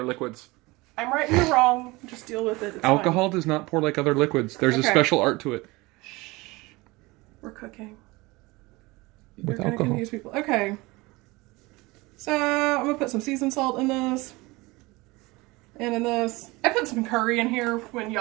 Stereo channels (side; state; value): left; quieter; 22.6 dB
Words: liquids. I'm right and you're wrong. Just deal with it. It's Alcohol fine. does not pour like other liquids. There's a Okay. special art to it. We're cooking. With You're gonna alcohol. confuse people. Okay. So I'm gonna put some seasoned salt in this. And in this. I put some curry in here when